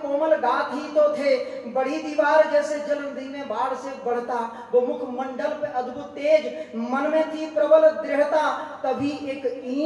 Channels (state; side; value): identical; both; correlation 1.00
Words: गात ही तो थे। बड़ी दीवार जैसे जलंधी में बाढ़ से बढ़ता, वो मुखमंडल पे अद्भुत तेज, मन में थी प्रबल दृढ़ता। तभी एक